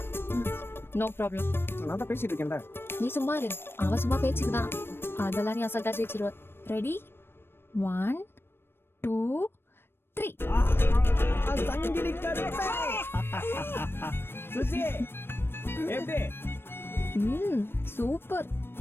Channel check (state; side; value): late; right; 0.11 ms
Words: No problem. நான் தான் பேசிட்டு இருக்கேன்ல. நீ சும்மா இரு. அவன் சும்மா பேச்சுக்குதான். அதெல்லாம் நீ அசால்ட்டா ஜெயிச்சிருவ. ரெடி 1 2 3. சங்கிலி கருப்பே. சுஜி எப்படி? சூப்பர்.